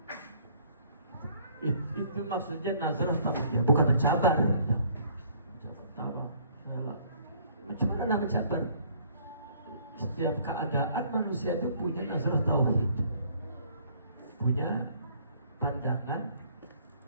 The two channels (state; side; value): inverted; both; correlation -0.59